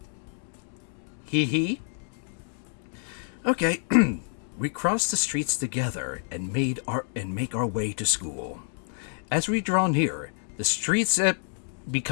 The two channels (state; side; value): silent; right; 59 dB below the other